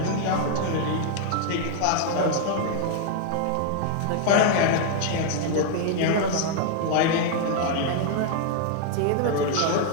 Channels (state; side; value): different; both; correlation 0.00